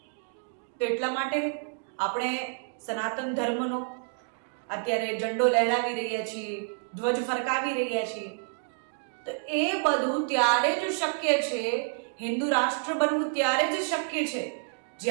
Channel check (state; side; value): silent; left; 59 dB below the other